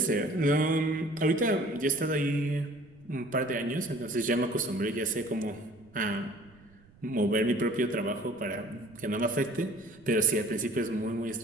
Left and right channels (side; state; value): right; noise; rumble, 27 dB below the sound